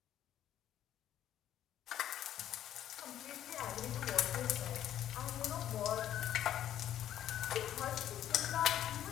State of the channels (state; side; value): quieter; right; 11.3 dB